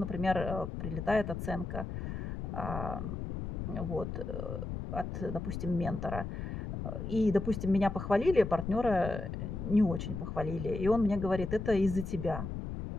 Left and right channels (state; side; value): noise; left; rumble, 5 dB below the sound